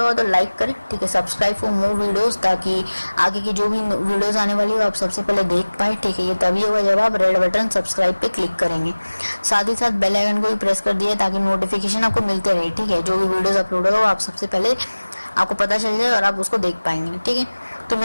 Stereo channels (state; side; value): inverted; both; correlation -1.00